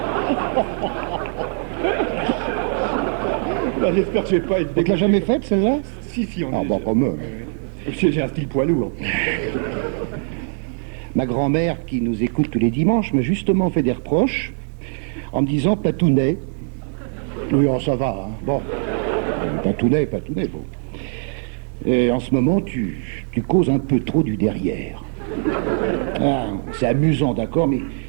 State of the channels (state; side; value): silent; left; 65 dB below the other